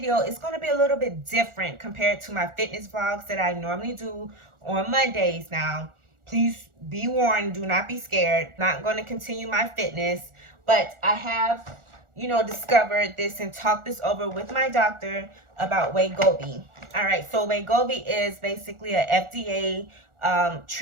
is going to be a little bit different compared to my fitness vlogs that I normally do on Mondays. Now, please be warned, do not be scared. Not going to continue my fitness, but I have, discovered this and talked this over with my doctor about Wegovy. All right, so Wegovy is basically a FDA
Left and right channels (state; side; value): late; left; 1.4 ms